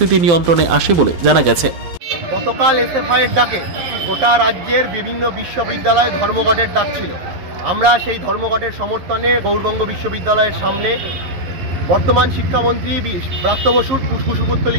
নিয়ন্ত্রণে আসে বলে জানা গেছে। গতকাল এসএফআই এর ডাকে গোটা রাজ্যের বিভিন্ন বিশ্ববিদ্যালয়ে ধর্মঘটের ডাক ছিল। আমরা সেই ধর্মঘটের সমর্থনে গৌড়বঙ্গ বিশ্ববিদ্যালয়ের সামনে বর্তমান শিক্ষামন্ত্রী ব্রাত্য বসুর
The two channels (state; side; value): late; left; 11 ms